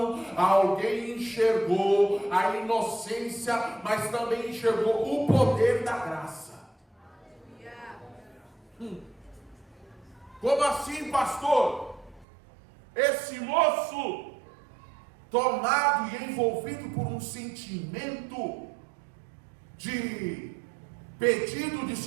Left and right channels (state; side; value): drops out; left; at 12.2 s